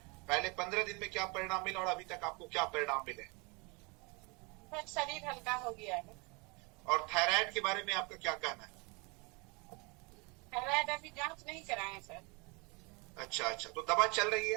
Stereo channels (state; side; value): quieter; left; 29.4 dB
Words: पहले 15 दिन में क्या परिणाम मिला और अभी तक आपको क्या परिणाम मिले? सर शरीर हल्का हो गया है। और थायराइड के बारे में आपका क्या कहना है? थायराइड अभी जांच नहीं कराए सर। अच्छा अच्छा, तो दवा चल रही